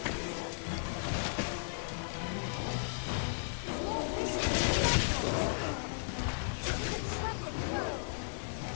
Oh, allez, il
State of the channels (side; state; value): right; silent; digital silence